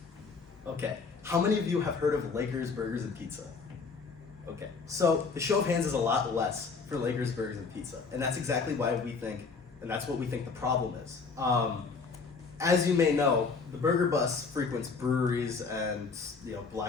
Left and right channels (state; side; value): quieter; right; 4.8 dB